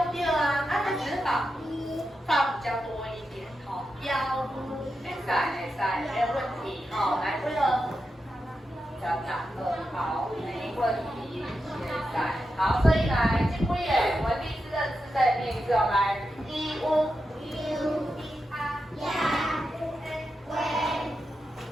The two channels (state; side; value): normal; both; correlation 0.88